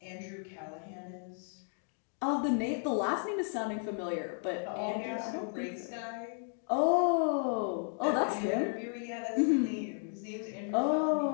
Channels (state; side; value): silent; right; 55 dB below the other